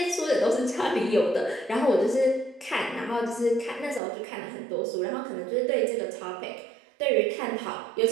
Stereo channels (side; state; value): left; drops out; at 4.0 s